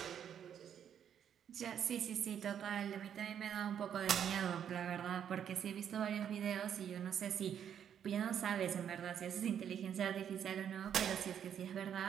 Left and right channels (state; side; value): quieter; left; 8.9 dB